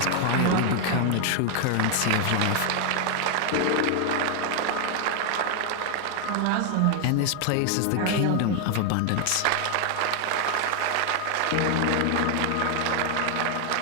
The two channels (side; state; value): both; different; correlation 0.00